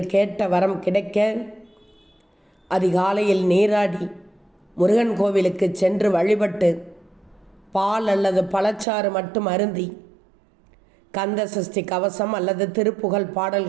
கேட்ட வரம் கிடைக்க அதிகாலையில் நீராடி முருகன் கோவிலுக்கு சென்று வழிபட்டு பால் அல்லது பழச்சாறு மட்டும் அருந்தி கந்த சஷ்டி கவசம் அல்லது திருப்புகழ்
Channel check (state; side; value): drops out; left; at 8.8 s